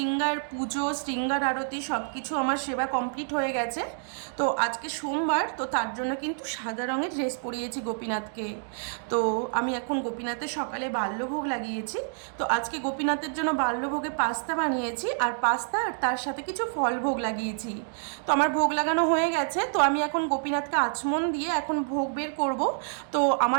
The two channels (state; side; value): silent; left; digital silence